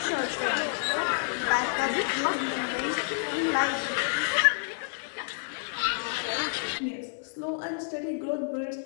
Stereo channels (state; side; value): silent; right; digital silence